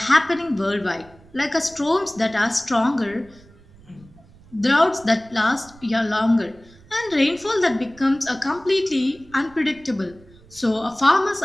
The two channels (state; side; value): noise; right; rumble, 25 dB below the sound